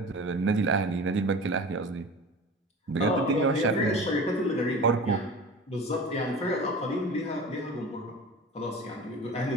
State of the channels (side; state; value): both; normal; correlation 0.36